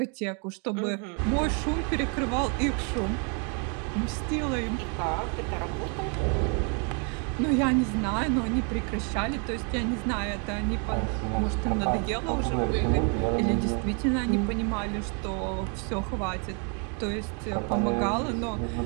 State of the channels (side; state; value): left; quieter; 37.6 dB